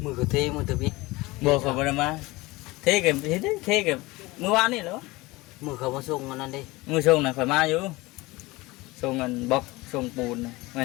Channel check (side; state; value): right; quieter; 21.6 dB